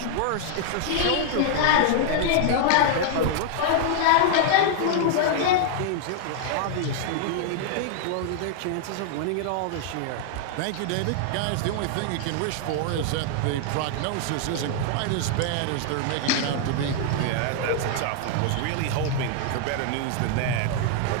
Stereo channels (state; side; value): different; both; correlation 0.00